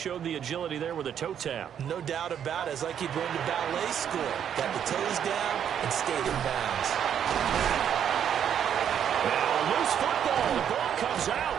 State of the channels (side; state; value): left; quieter; 8.9 dB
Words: the agility there with a toe tap. No doubt about it. It's like he'd been to ballet school. Got the toes down and stayed in bounds. Now, loose football. The ball comes out.